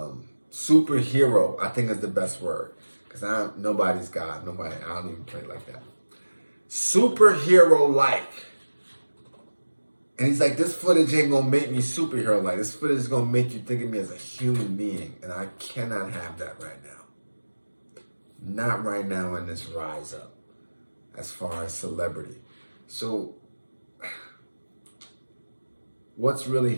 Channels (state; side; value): inverted; both; correlation -1.00